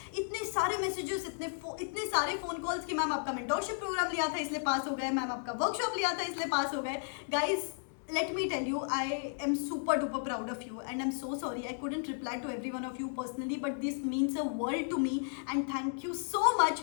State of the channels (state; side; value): silent; right; digital silence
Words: इतने सारे मैसेजेस, इतने सारे फोन कॉल्स कि मैम आपका मेंटोरशिप प्रोग्राम लिया था इसलिए पास हो गए, मैम आपका वर्कशॉप लिया था इसलिए पास हो गए। Guys, let me tell you, I am super duper proud of you and I'm so sorry I couldn't reply to every one of you personally, but this means a world to me and thank you so